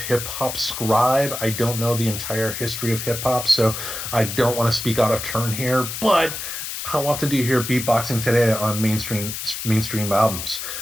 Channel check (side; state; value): left; noise; hiss, 6 dB below the sound